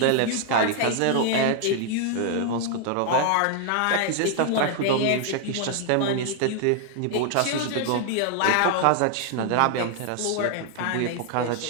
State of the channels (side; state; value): both; different; correlation 0.00